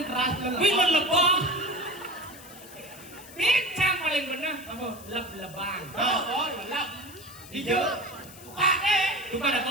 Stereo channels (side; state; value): left; noise; hiss, 18 dB below the sound